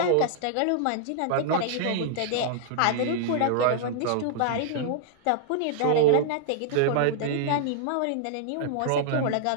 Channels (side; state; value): both; different; correlation -0.01